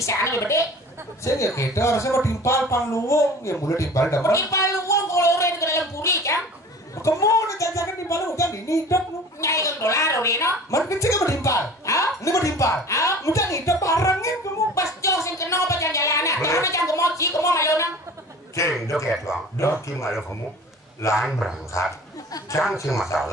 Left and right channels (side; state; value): both; normal; correlation 0.42